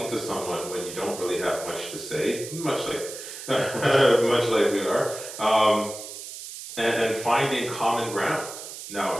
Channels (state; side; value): noise; right; hiss, 11 dB below the sound